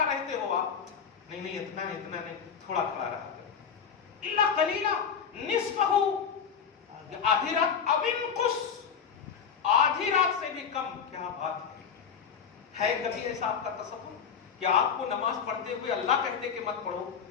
رہتے ہو آپ؟ نہیں اتنا نہیں تھوڑا کھڑا رہا کرو. الا قلیلا نصفہ، آدھی رات، او انقص، آدھی رات سے بھی کم. کیا بات ہے کبھی ایسا آپ کا تصور کہ آپ کو نماز پڑھتے ہوئے اللہ کہتے کہ مت پڑھو؟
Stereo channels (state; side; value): quieter; right; 6.9 dB